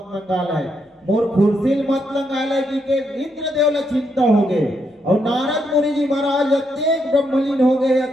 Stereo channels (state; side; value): normal; both; correlation 0.78